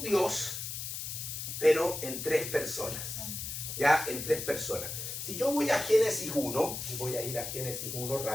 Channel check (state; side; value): noise; left; hiss, 6 dB below the sound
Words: Dios, pero en tres personas. Ya, en tres personas. Si yo voy a Génesis 1, y voy a ir a Génesis 1